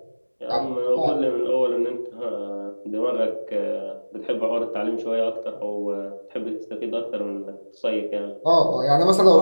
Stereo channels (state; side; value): inverted; both; correlation -1.00